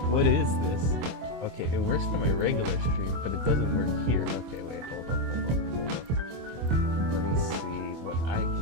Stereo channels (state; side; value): late; left; 25 ms